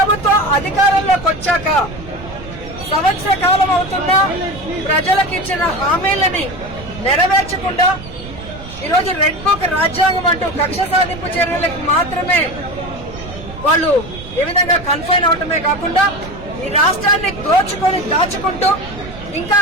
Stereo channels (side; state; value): right; noise; rumble, 14 dB below the sound